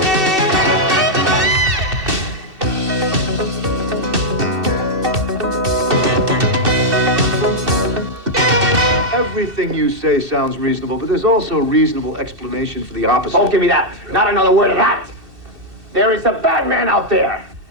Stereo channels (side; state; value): left; late; 2.6 ms